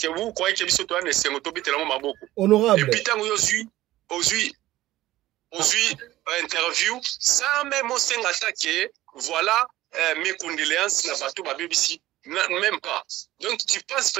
que vous croyez que biso to na sengo to bitela maboko? Honorable. Et puis tant aujourd'hui interview sans même au senga attaquer voilà mes condoléances na batu ba BBC même pas. Donc tu penses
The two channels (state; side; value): quieter; left; 15.8 dB